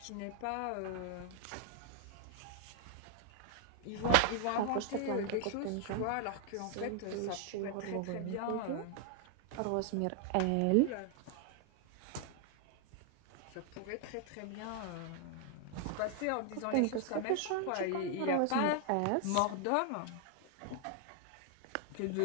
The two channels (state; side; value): different; both; correlation 0.00